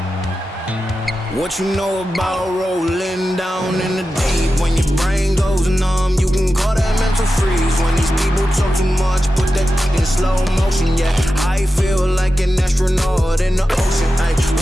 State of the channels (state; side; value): normal; both; correlation 0.92